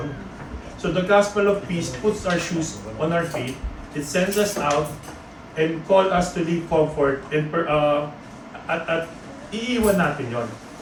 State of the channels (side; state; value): both; identical; correlation 1.00